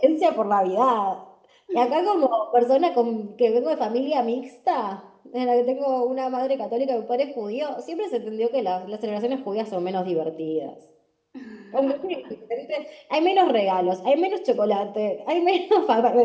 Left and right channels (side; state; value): both; identical; correlation 1.00